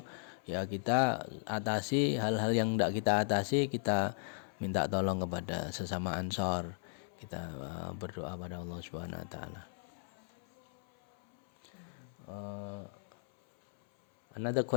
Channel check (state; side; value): silent; right; 54 dB below the other